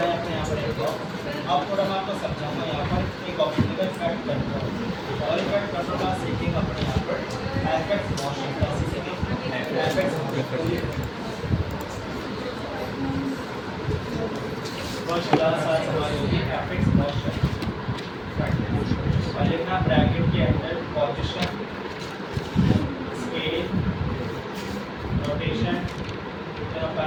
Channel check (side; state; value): both; identical; correlation 1.00